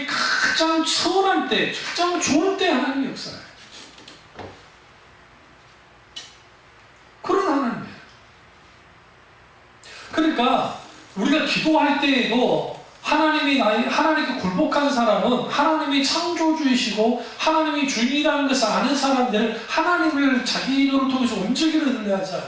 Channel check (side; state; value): both; identical; correlation 1.00